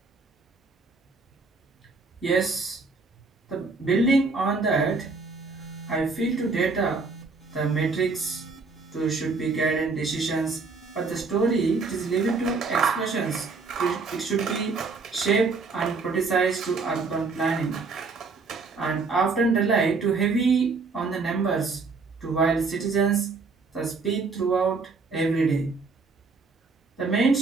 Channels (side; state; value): left; quieter; 4.3 dB